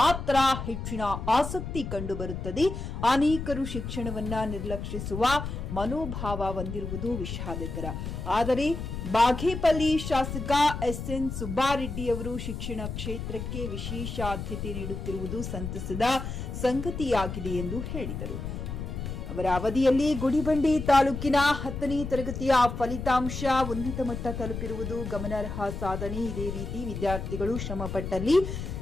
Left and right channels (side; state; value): left; noise; rumble, 6 dB below the sound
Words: ಹೆಚ್ಚಿನ ಆಸಕ್ತಿ ಕಂಡುಬರುತ್ತದೆ. ಅನೇಕರು ಶಿಕ್ಷಣವನ್ನ ನಿರ್ಲಕ್ಷಿಸುವ ಮನೋಭಾವ ಹೊಂದಿರುವುದು ವಿಷಾದಕರ. ಆದರೆ ಬಾಗೇಪಲ್ಲಿ ಶಾಸಕ ಎಸ್ಎನ್ ಸುಬ್ಬಾರೆಡ್ಡಿ ಅವರು ಶಿಕ್ಷಣ ಕ್ಷೇತ್ರಕ್ಕೆ ವಿಶೇಷ ಆದ್ಯತೆ ನೀಡುತ್ತಿರುವುದು ಸಂತಸದ ಸಂಗತಿಯಾಗಿದೆ ಎಂದು ಹೇಳಿದರು. ಅವರ ಅವಧಿಯಲ್ಲಿ ಗುಡಿಬಂಡೆ ತಾಲೂಕಿನ 10ನೇ ತರಗತಿಯ ಫಲಿತಾಂಶ ಉನ್ನತ ಮಟ್ಟ ತಲುಪಿರುವುದು ಗಮನಾರ್ಹ ಸಾಧನೆ. ಇದೇ ರೀತಿ ವಿದ್ಯಾರ್ಥಿಗಳು ಶ್ರಮಪಟ್ಟಲ್ಲಿ